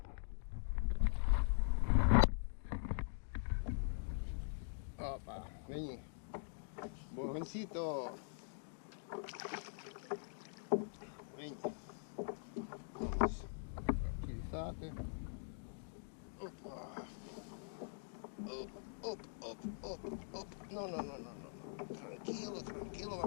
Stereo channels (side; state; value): right; silent; digital silence